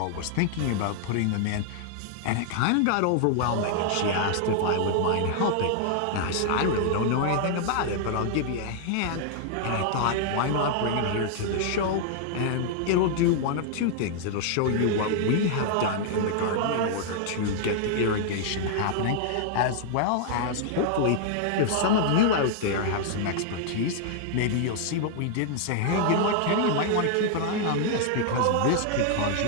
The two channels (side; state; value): both; different; correlation -0.01